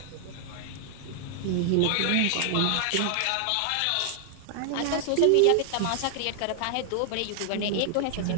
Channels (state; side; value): different; both; correlation 0.00